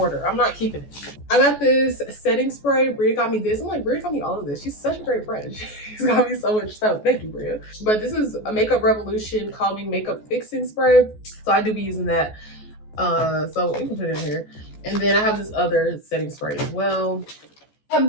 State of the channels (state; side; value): late; right; 14 ms